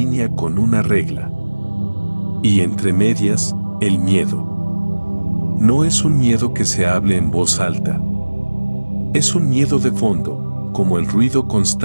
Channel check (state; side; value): inverted; both; correlation -1.00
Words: con una regla. Y entre medias, El miedo. No es un miedo que se hable en voz alta. Es un miedo de fondo, como el ruido